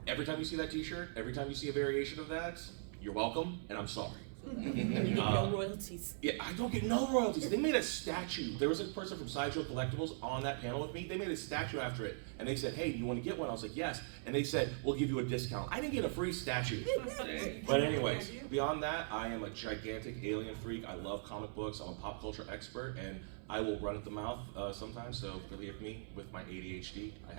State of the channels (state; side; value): silent; left; 51 dB below the other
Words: every time you see that t-shirt, every time you see a variation of that, you're welcome, and I'm sorry. No royalties. Yeah, I don't get no royalties. They made a statue. There was a person from Sideshow Collectibles on that panel with me. They made a statue after it, and they said, hey, do you want to get one? I was like, yes. And they said, we'll give you a discount. I didn't get a free statue. But anyways, beyond that, I am a gigantic alien freak. I love comic books. I'm a pop culture expert, and I will run at the mouth sometimes, so forgive me with my ADHD. I